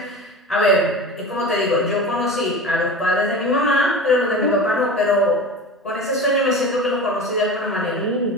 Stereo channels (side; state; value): both; normal; correlation 0.31